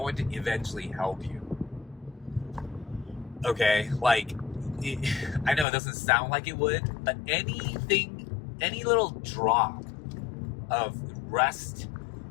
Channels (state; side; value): drops out; right; at 5.7 s